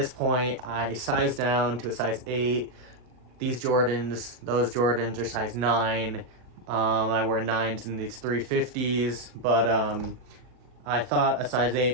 point, I sized down to a size 8. Those Jordans are size 9. I wear 9s in these 350s, but I thought a size 8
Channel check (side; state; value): left; late; 39 ms